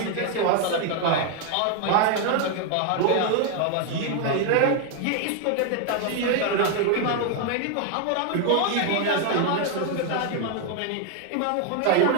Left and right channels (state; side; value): different; both; correlation 0.00